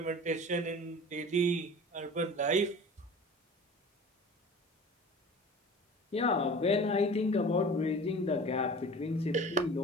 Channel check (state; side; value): normal; both; correlation 0.40